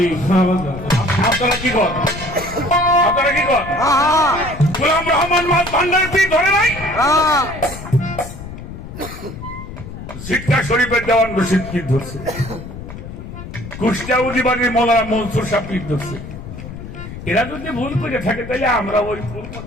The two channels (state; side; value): noise; left; rumble, 11 dB below the sound